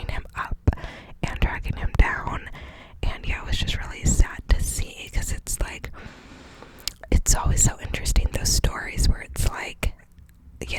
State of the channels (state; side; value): identical; both; correlation 1.00